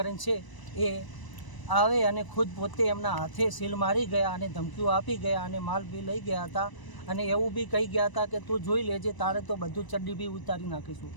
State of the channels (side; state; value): right; late; 1.0 ms